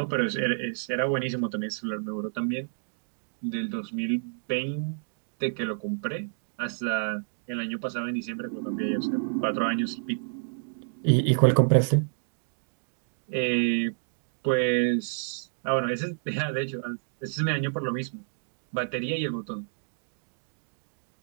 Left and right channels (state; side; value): silent; left; digital silence